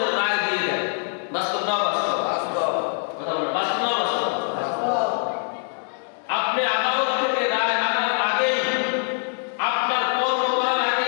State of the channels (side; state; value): right; silent; 63 dB below the other